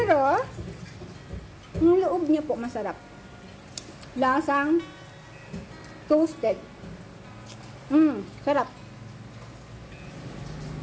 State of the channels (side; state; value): both; identical; correlation 1.00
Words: yung loob niya po masarap. Lasang toasted. Sarap.